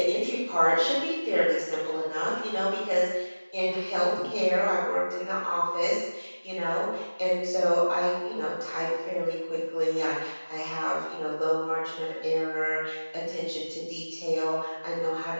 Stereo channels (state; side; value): inverted; both; correlation -1.00